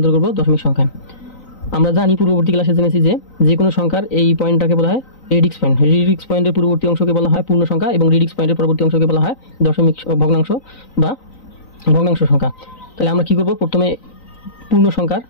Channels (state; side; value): late; right; 3.9 ms